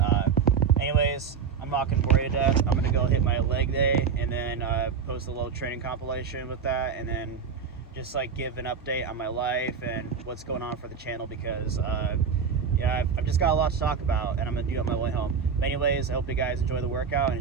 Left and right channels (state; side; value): quieter; left; 6.3 dB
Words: anyways, I'm not gonna bore you to death. I'm gonna go hit my leg day and then post a little training compilation with that, and then just like give an update on my life and what's going on for the channel, because yeah, I've just got a lot to talk about, and I'm gonna do it on my way home. But anyways, I hope you guys enjoy the workout and